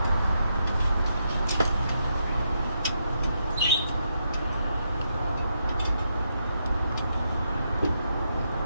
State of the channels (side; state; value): both; inverted; correlation -0.80